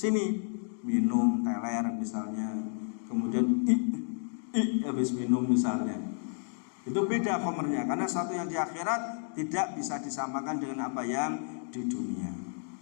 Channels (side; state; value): right; silent; 57 dB below the other